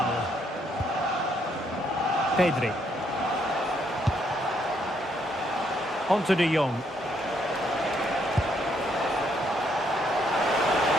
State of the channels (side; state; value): both; normal; correlation 0.72